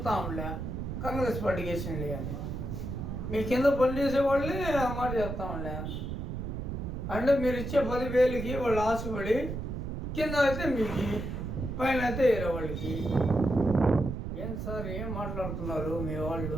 ఉండే కాంగ్రెస్ పార్టీకి వేసేయండి అని. మీ కింద పనిచేసే వాళ్ళే ఆ మాట చెప్తా ఉండే. అంటే మీరు ఇచ్చే 10,000కి వాళ్ళు ఆశపడి కింద అయితే మీకు, పైన అయితే వేరే వాళ్ళకి. ఏం సార్ ఏం మాట్లాడుతున్నారు మీ వాళ్ళు?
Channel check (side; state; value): right; noise; rumble, 5 dB below the sound